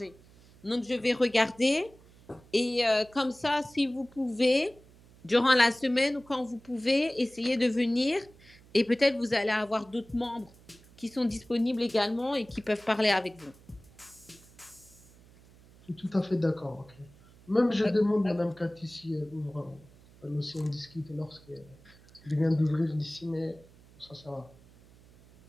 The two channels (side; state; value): right; noise; hum, 25 dB below the sound